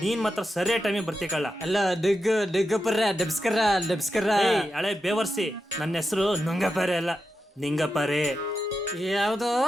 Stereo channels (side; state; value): both; normal; correlation 0.88